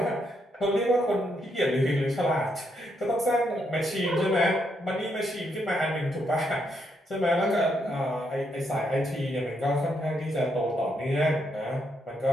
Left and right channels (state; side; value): normal; both; correlation 0.77